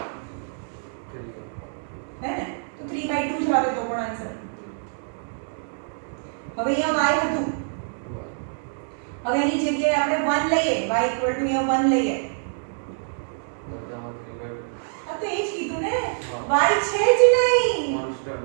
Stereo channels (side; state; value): left; silent; digital silence